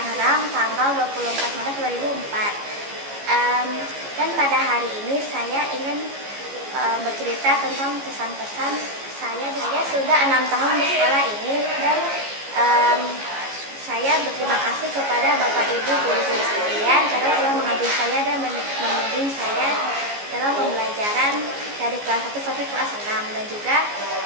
tanggal 24 Maret 2004. Dan pada hari ini saya ingin bercerita tentang pesan-pesan saya. Saya sudah 6 tahun di sekolah ini dan saya berterima kasih kepada Bapak Ibu guru-guru sekalian karena telah mengajari saya dan membimbing saya dalam pembelajaran dari kelas 1 sampai kelas 6, dan juga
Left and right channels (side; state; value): left; late; 14 ms